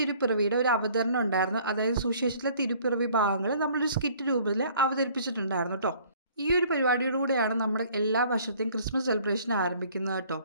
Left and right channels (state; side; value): inverted; both; correlation -0.56